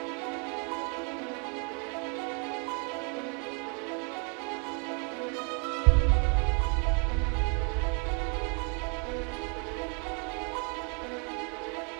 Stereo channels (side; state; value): left; quieter; 37.9 dB